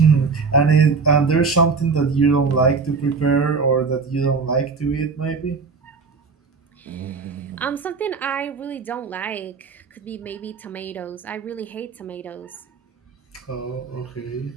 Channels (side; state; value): left; quieter; 4.8 dB